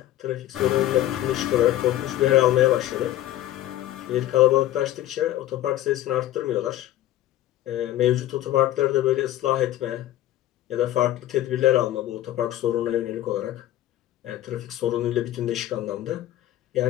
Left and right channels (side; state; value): right; quieter; 13.9 dB